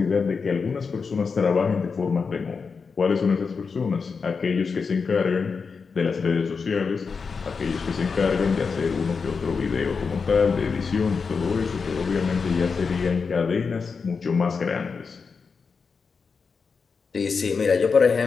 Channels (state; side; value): quieter; right; 5.2 dB